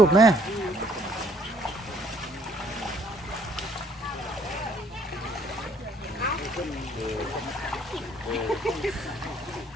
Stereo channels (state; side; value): normal; both; correlation 0.63